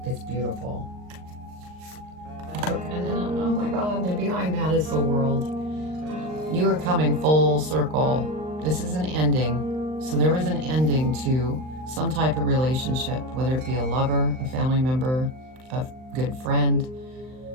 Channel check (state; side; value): late; left; 39 ms